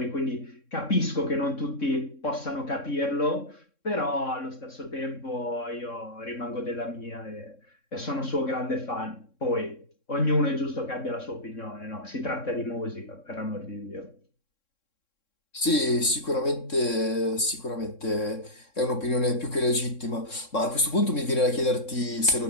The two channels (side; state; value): right; late; 3.7 ms